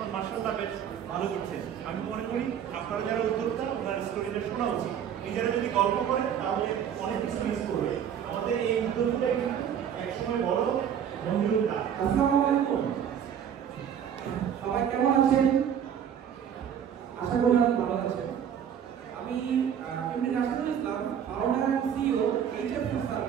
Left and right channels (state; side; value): quieter; left; 8.8 dB